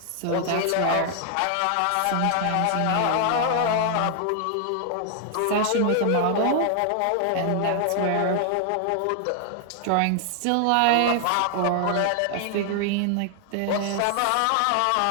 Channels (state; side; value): different; both; correlation 0.00